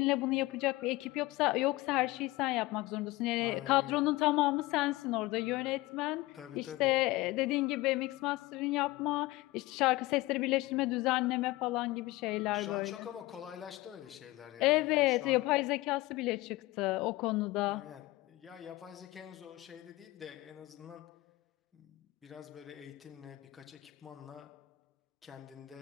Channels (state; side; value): quieter; right; 19.7 dB